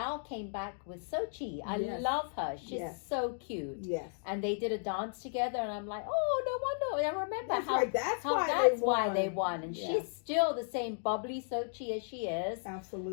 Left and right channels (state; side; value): silent; right; digital silence